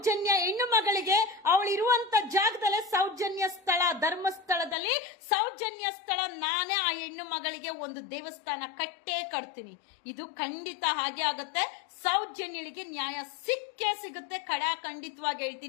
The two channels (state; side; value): drops out; right; at 4.8 s